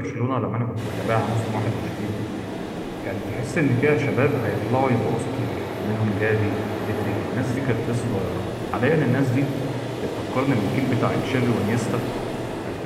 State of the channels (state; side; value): identical; both; correlation 1.00